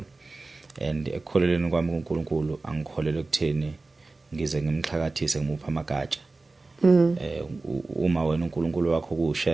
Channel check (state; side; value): quieter; left; 3.4 dB